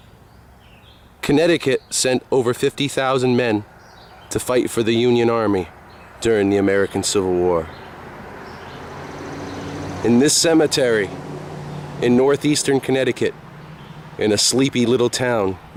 Connecticut sent over 50,000 men to fight for the Union Army during the American Civil War. In this cemetery, in northeastern Connecticut, in a sleepy little town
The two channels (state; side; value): identical; both; correlation 1.00